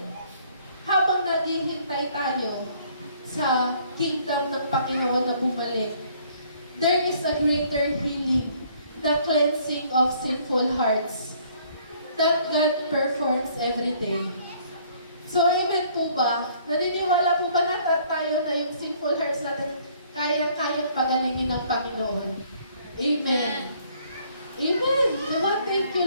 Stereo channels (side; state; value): both; inverted; correlation -0.61